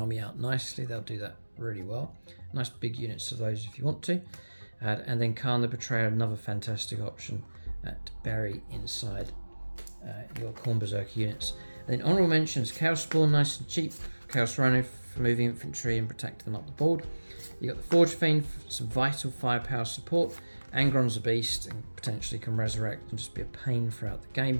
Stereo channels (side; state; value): both; inverted; correlation -1.00